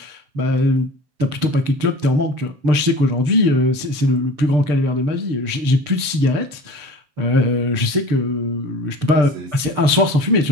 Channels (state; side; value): late; left; 6.8 ms